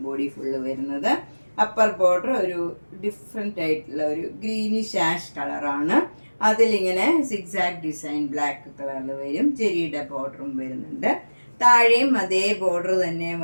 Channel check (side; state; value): both; inverted; correlation -1.00